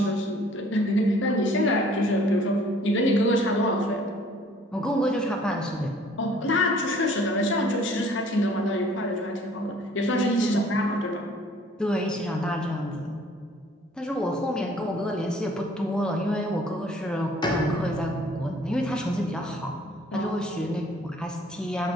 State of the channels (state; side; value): normal; both; correlation 0.56